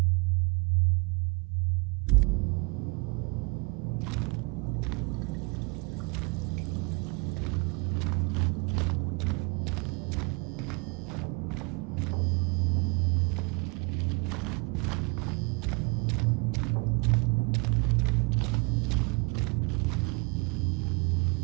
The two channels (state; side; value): quieter; left; 31.2 dB